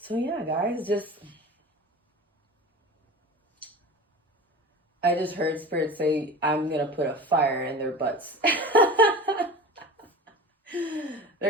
So yeah, guys, I just heard Spirit say, I'm gonna put a fire in their butts.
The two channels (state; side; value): normal; both; correlation 0.35